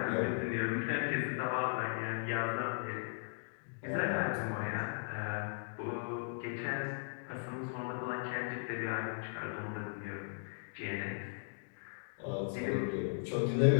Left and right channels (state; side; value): silent; right; digital silence